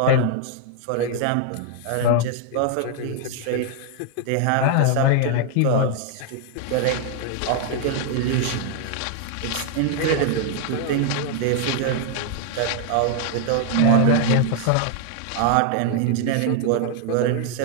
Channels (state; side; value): different; both; correlation 0.00